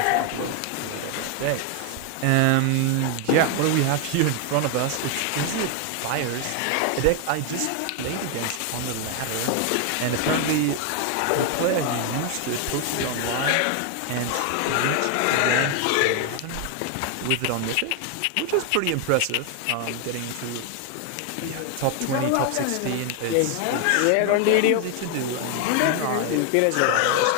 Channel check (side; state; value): both; different; correlation 0.01